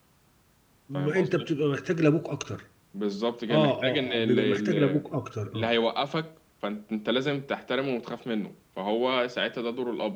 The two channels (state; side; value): identical; both; correlation 1.00